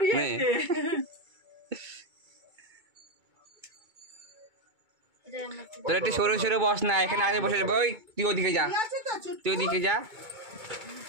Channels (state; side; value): late; left; 2.2 ms